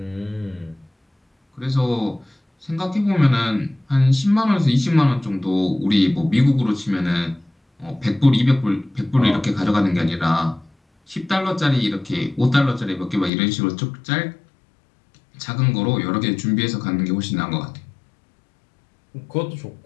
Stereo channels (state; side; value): drops out; right; at 13.3 s